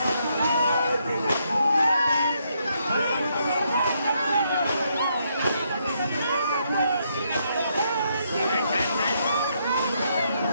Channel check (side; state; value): both; inverted; correlation -0.76